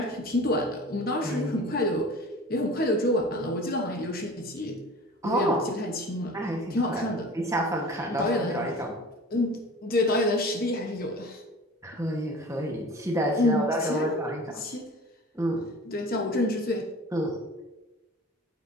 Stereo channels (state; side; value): normal; both; correlation 0.41